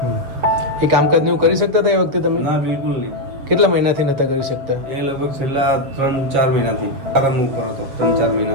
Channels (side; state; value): left; late; 7.4 ms